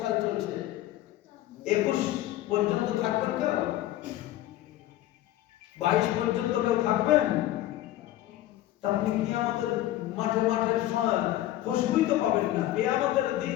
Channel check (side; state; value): right; quieter; 14.3 dB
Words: সাল চলছে, 21 পর্যন্ত থাকবেন কেউ? 22 পর্যন্ত কেউ থাকবেন? আপনি কিয়ামতের মাঠে খুশবুই তো পাবেন না। কিয়ামতের দিন